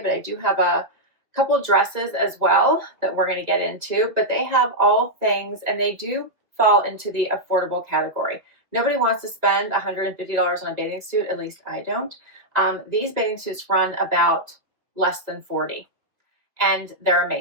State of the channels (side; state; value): left; late; 2.1 ms